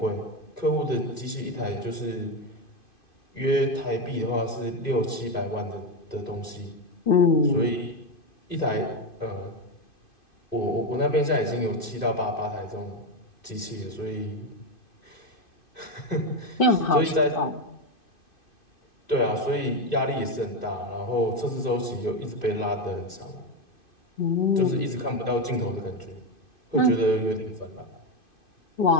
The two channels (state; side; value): late; right; 2.5 ms